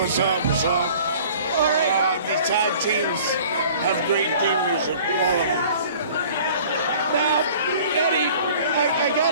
up? What's up? All right. These tag teams have great theme music, all of them. Now, Eddie, I got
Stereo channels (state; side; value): inverted; both; correlation -0.48